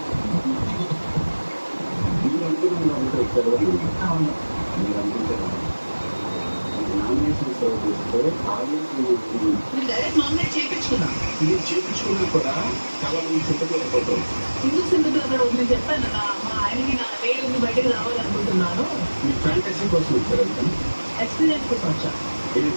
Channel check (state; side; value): inverted; both; correlation -1.00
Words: మీరు అనుకున్నాం కాబట్టి వచ్చారు అని అవును. మీరు అనుకుంటే నామినేషన్ సర్వ్ చేస్తే ఆడియన్స్ నేను డైరెక్ట్ నామినేట్ చేపించుకున్నా. మీరు చేయించుకున్నా కూడా చాలా మంది చింతపడిపోతారు. ఎందుకు సింగిల్ అక్కడ నేను చెప్పాను మా ఆయనకి నా నేను బయటకు రావాలనుకుంటున్నాను. మీ ఫ్యాంటసీ కోసం వచ్చారు ఎక్స్పీరియన్స్ కోసం వచ్చా. ఏ